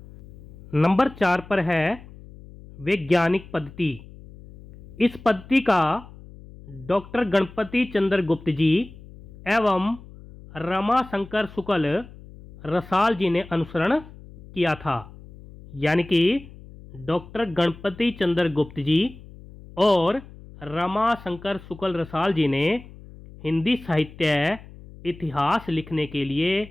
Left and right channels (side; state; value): left; noise; hum, 19 dB below the sound